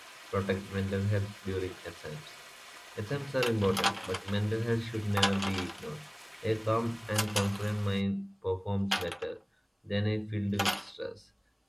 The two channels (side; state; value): both; identical; correlation 1.00